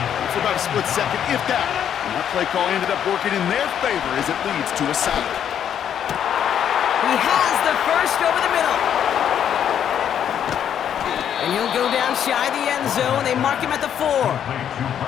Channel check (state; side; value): quieter; right; 9.3 dB